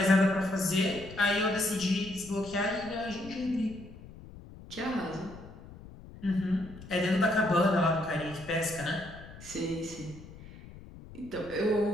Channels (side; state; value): left; noise; rumble, 17 dB below the sound